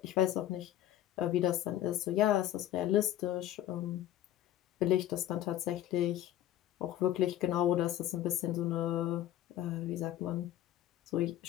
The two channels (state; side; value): quieter; right; 12.7 dB